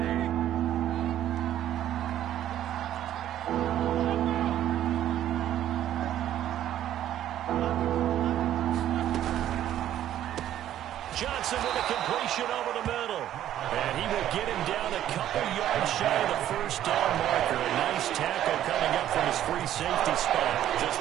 Johnson with a completion over the middle. And he will get him down a couple yards shy of the first down marker. A nice tackle coming up from his free safety spot. Just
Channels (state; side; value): quieter; left; 11.8 dB